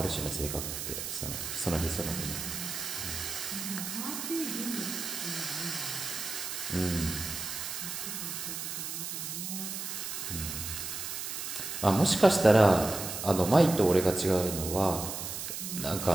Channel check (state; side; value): noise; right; hiss, 5 dB below the sound